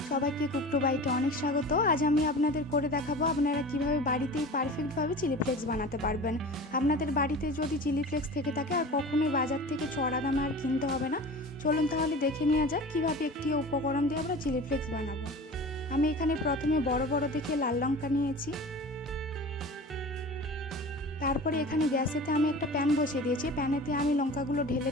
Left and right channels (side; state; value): both; normal; correlation 0.37